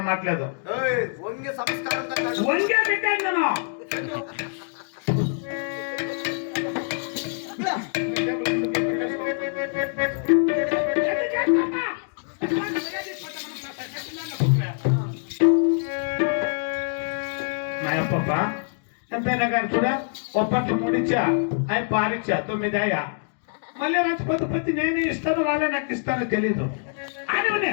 మాట్లేదు వంగే సంస్కారం వంగే పెట్టాను ఎంతైనా కానీ చూడ ఒప్పట్లు ముడిచ్చా అవి పారిచ్చా 9 అయ్యా మళ్ళీ రంచిపోతే ప్రతి నేనే ఇస్తాను వాళ్ళే నాకు ఇస్తారో తెలీదు అని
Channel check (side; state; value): right; silent; 60 dB below the other